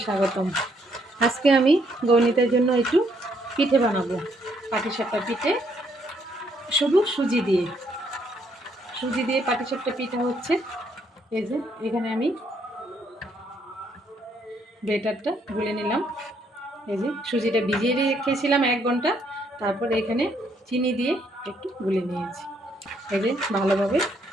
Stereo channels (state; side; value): normal; both; correlation 0.71